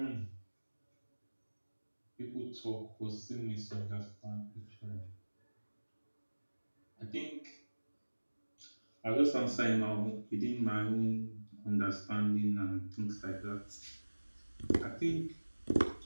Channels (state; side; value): inverted; both; correlation -1.00